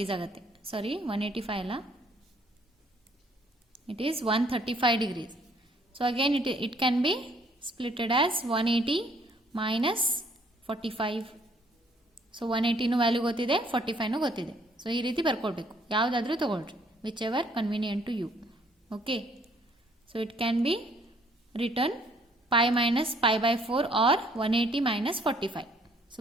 ಆಗುತ್ತೆ. ಸಾರಿ, 185 ಅಲ್ಲ, it is 135 degrees. So again it can be splitted as 180 minus 45. So 180 value ಗೊತ್ತಿದೆ, 45 ಗೊತ್ತಿದೆ. ಸೊ ಈ ರೀತಿ ಬರ್ಕೊಳ್ಬೇಕು, ಯಾವುದಾದ್ರೂ ತಗೊಳ್ರಿ, whichever convenient to you. Okay, so it can be written pi minus pi by 4 or 180 minus 45. So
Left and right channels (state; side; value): normal; both; correlation 0.63